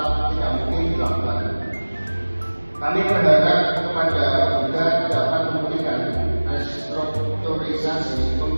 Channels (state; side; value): inverted; both; correlation -1.00